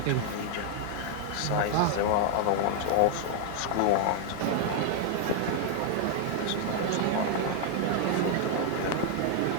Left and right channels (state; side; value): different; both; correlation 0.00